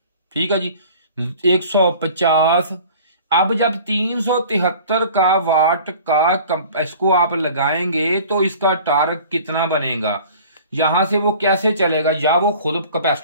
ठीक है जी, 150। अब जब 373 का वाट का इसको आप लगाएंगे तो इसका टार्क कितना बनेगा, यहां से वो कैसे चलेगा, या वो खुद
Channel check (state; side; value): inverted; both; correlation -0.46